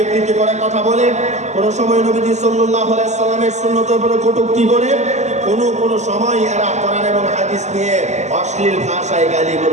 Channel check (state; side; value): late; left; 0.33 ms